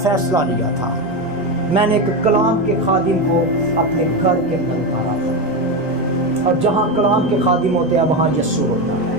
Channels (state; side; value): normal; both; correlation 0.14